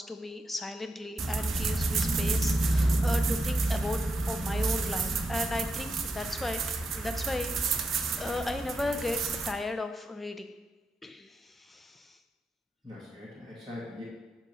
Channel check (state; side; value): normal; both; correlation 0.85